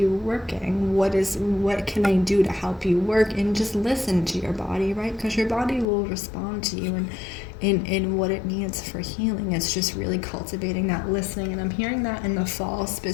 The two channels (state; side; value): drops out; right; at 5.9 s